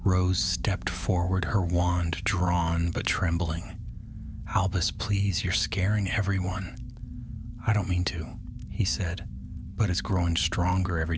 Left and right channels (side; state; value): both; identical; correlation 1.00